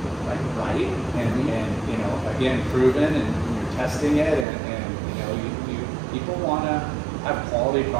like right, and again, proven, and you're testing it, and you people want to have quality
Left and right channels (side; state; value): left; drops out; at 4.5 s